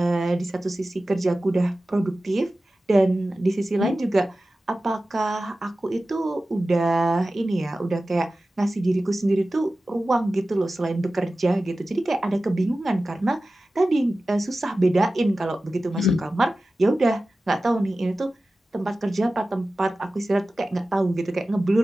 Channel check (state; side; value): normal; both; correlation 0.95